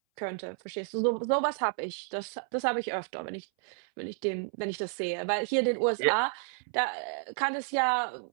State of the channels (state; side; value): silent; left; 57 dB below the other